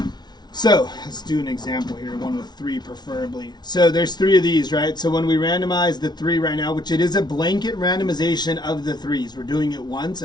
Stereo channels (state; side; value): late; right; 0.20 ms